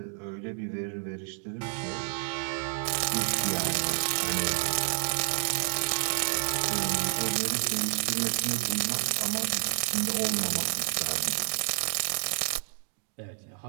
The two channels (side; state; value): left; silent; 58 dB below the other